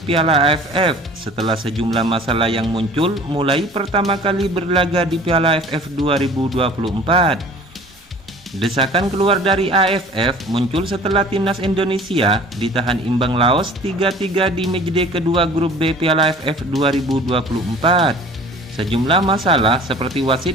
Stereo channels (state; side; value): normal; both; correlation 0.46